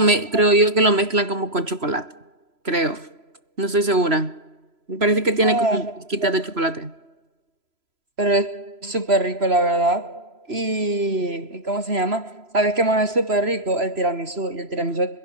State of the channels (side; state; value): left; late; 3.0 ms